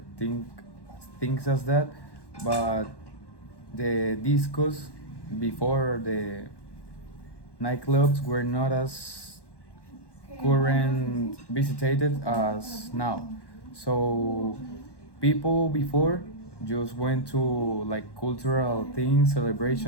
things as that, but the discos before the nightclubs were not as current visited as now. So people before just went to like cultural things,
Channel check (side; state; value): right; late; 1.1 ms